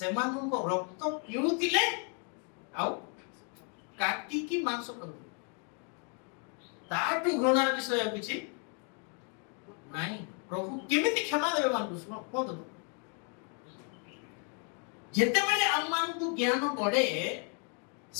ରକ୍ତ ପିଉଥିଲେ ଆଉ କାଟିକି ମାଂସ କରୁଥିଲେ। ତାଠୁ ଘୃଣାର ବିଷୟ କିଛି ନାହିଁ। ପ୍ରଭୁ କେମିତି କ୍ଷମା ଦେବେ ମାନଙ୍କୁ? କୁହନ୍ତୁ। ଯେତେବେଳେ ଆମମାନଙ୍କୁ ଜ୍ଞାନ ବଢେ,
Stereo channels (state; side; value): quieter; right; 39.4 dB